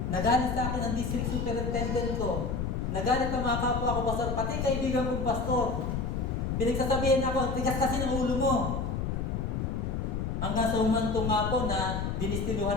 Nagalit sa akin ang district superintendent ko. Nagalit ang mga kapwa ko, pastor, pati kaibigan kong pastor. Pinagsasabihin ako, ang tigas kasi ng ulo mo. Hanggang sa umantong nga po na dinistinuhan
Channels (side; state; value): left; noise; rumble, 1 dB below the sound